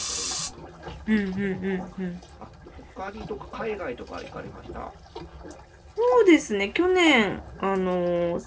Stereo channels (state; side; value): identical; both; correlation 1.00